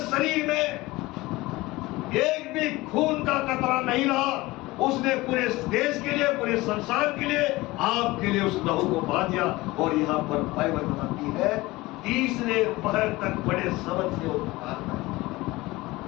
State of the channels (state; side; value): quieter; right; 20.3 dB